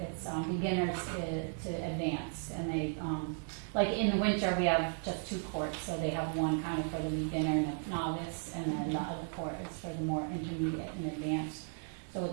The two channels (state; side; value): silent; left; 54 dB below the other